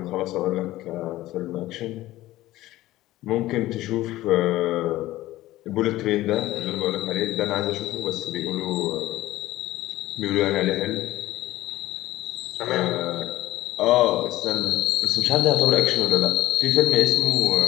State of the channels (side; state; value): right; quieter; 16.2 dB